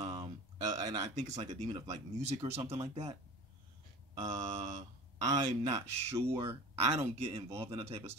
I think it's like a demon of like music or something like that. I'm not sure. I don't get involved in that type of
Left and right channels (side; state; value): both; normal; correlation 0.37